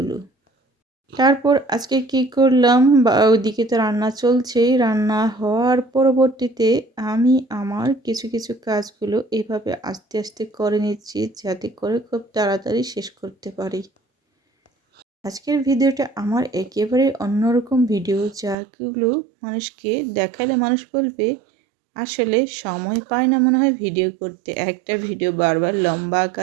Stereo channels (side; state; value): left; drops out; at 18.6 s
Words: তারপর আজকে কি করলাম, বা ওইদিকে তো রান্না চলছেই, রান্না হওয়ার পরবর্তীতে আমি আমার কিছু কিছু কাজগুলো এভাবে আস্তে আস্তে করে নিচ্ছি যাতে করে খুব তাড়াতাড়ি শেষ করতে পারি। আজকের ভিডিওটা আমার একেবারে অন্যরকম ভিডিও, যাগুলো মানুষকে দেখালে মানুষ বলবে আসলে সময় পায় না মনে হয় ভিডিও করতে, একটা ভিডিও বারবার লম্বা